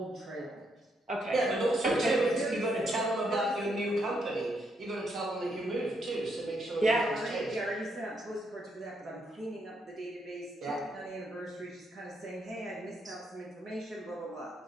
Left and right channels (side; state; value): both; normal; correlation 0.76